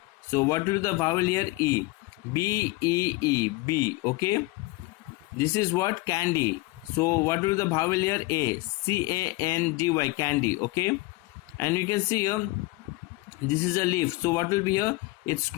So what will be the vowel here? E. B-E-E, B. Okay, this is what? Candy. So what will be the vowel here? A. C-A-N-D-Y, candy. Okay, and you can see here this is a leaf. So what will be here? It's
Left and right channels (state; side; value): quieter; right; 22.2 dB